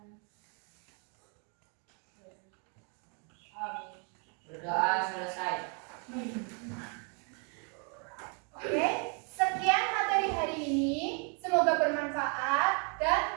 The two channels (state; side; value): quieter; left; 38.5 dB